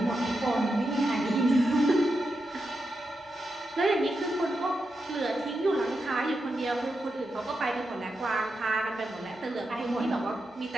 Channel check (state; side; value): normal; both; correlation 0.87